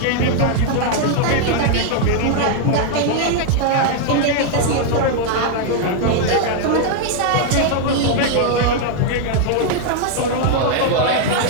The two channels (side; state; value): both; different; correlation 0.00